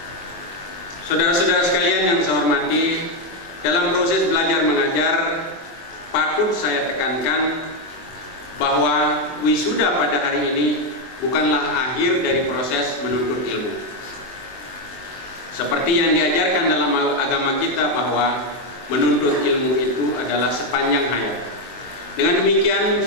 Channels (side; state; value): right; late; 23 ms